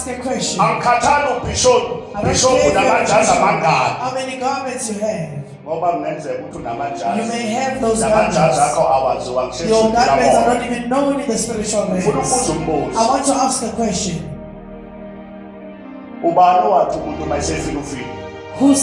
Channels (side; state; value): both; identical; correlation 1.00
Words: a question. Angikhathali ubishop namajazi amangaki. How many garments you have? Ngoba kungenzeka ukuthi unamajazi. You may have those garments. Namajazi akho awaziwa Your garments are not even known in the spiritual realm. Ufuna ukubuza umbuzo. I want to ask a question. Ubani wathi umuntu mayesefika ufika? Who